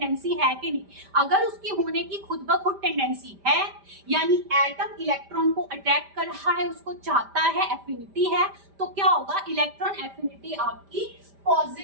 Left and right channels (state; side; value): late; left; 5.0 ms